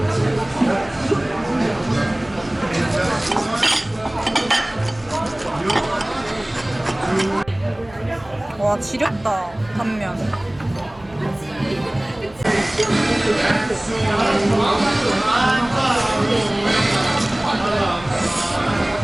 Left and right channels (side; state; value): right; noise; hum, 23 dB below the sound